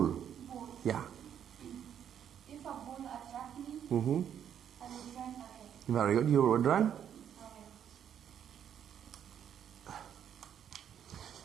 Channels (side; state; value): left; quieter; 9.2 dB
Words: Ball. Yeah. If a ball attracts me, Mm-hmm. I will run away. Very good. You would run.